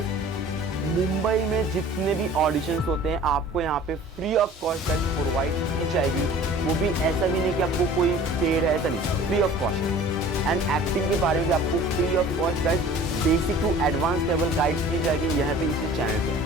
मुंबई में जितने भी ऑडिशंस होते हैं आपको यहाँ पे फ्री ऑफ कॉस्ट प्रोवाइड की जाएगी। वो भी ऐसा भी नहीं कि आपको कोई पेड है, ऐसा नहीं, free of cost. And acting के बारे में भी आपको free of cost guys basic to advance level guide की जाएगी यहाँ पे इसी चैनल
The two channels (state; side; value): normal; both; correlation 0.46